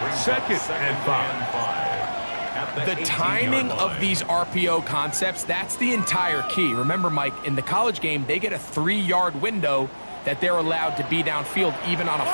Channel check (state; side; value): inverted; both; correlation -1.00